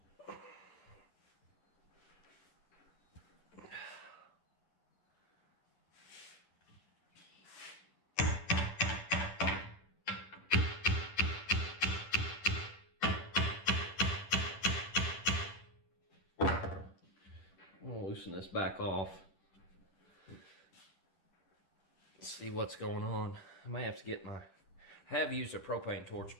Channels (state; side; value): late; right; 10 ms